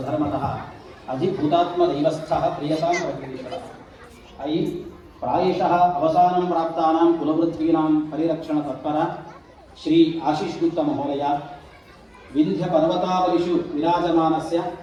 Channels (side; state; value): both; identical; correlation 1.00